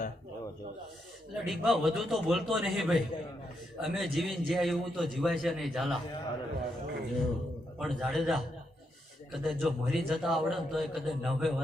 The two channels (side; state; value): both; normal; correlation 0.81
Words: એટલે ડીકભા વધુ તો બોલતો નહીં ભાઈ અમે જીવીને જ્યાં એવું તો જીવાય છે નહીં ઝાલા પણ જાડેજા કદાચ જો મરી જતા આવડે ને તો એ કદાચ 90